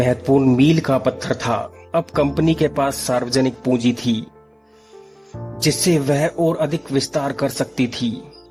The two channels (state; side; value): identical; both; correlation 1.00